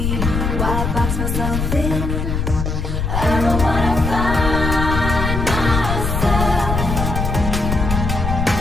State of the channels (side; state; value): left; noise; rumble, 2 dB below the sound